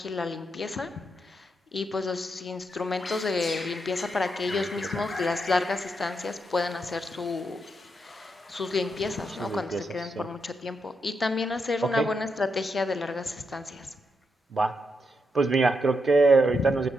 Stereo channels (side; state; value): both; normal; correlation 0.82